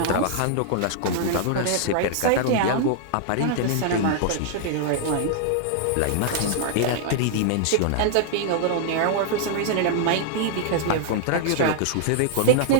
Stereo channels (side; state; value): both; different; correlation -0.01